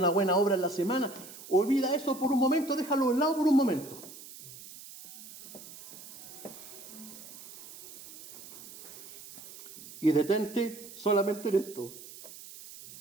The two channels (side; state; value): right; noise; hiss, 16 dB below the sound